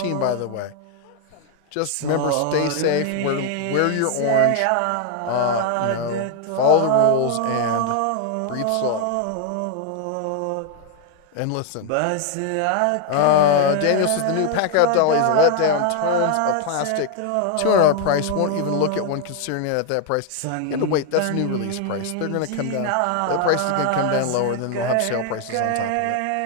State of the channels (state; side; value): different; both; correlation 0.00